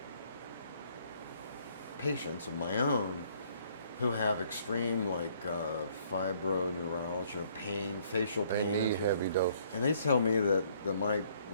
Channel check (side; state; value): both; inverted; correlation -0.64